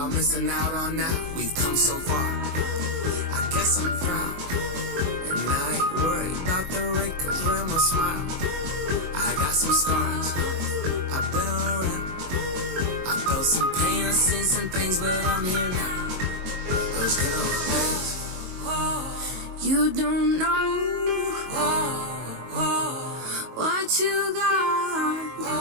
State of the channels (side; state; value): left; late; 22 ms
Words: missing out on now. We've come so far. I guess I'm proud. And I ain't worried about the wrinkles around my smile. I got some scars. I've been around. I felt some pain, I've seen some things, but I'm here now. Those good old days. You don't know what you got